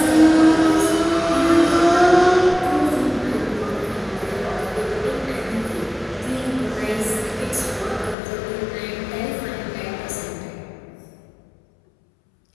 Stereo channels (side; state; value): right; drops out; at 8.2 s